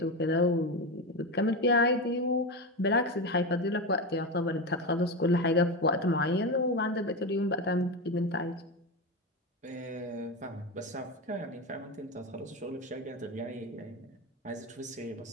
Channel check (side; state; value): both; normal; correlation 0.17